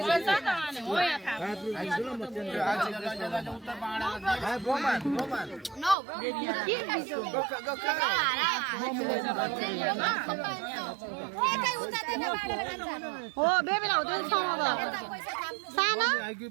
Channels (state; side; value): drops out; left; at 6.0 s